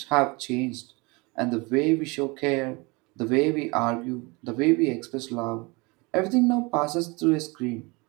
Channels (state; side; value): quieter; left; 26.7 dB